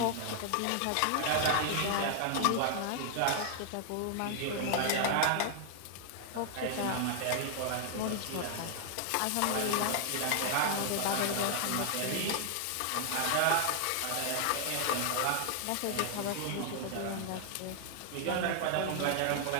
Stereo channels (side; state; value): both; different; correlation 0.00